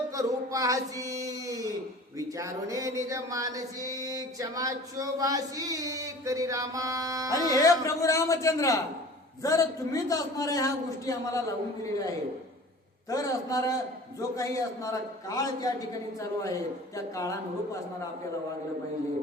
करू पाहशी विचारुने निज मानसी क्षमा शोभाशी करी रामा. आणि हे प्रभू रामचंद्र जर तुम्हीच असणाऱ्या ह्या गोष्टी आम्हाला लावून दिलेल्या आहेत तर असणारा जो काही असणारा काळ त्या ठिकाणी चालू आहे त्या काळानुरूप असणारा आपल्याला वागलं पाहिजे.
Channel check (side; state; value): both; normal; correlation 0.43